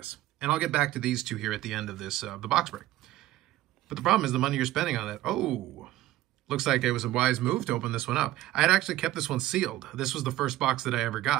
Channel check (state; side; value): quieter; left; 15.2 dB